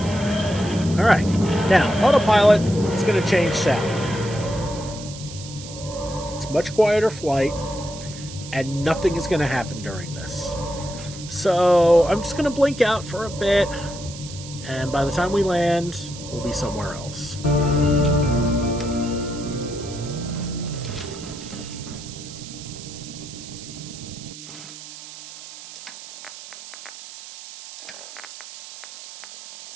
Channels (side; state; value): right; noise; hiss, 14 dB below the sound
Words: Alright. Now, autopilot is going to change sound. It's much quieter flight, and nothing is going to happen during this. So, I'm just going to blink out for a bit, and by the time we land, we'll be somewhere else.